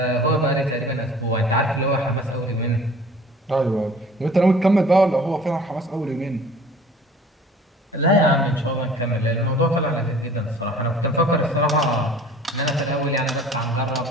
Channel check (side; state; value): both; normal; correlation 0.48